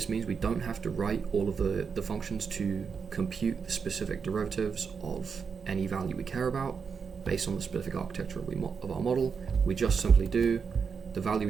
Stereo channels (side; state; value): left; quieter; 5.9 dB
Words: means we don't have to write all of the functions to compute the specific derivatives of any value we care about based on the specific architecture of our model. We just simply do the value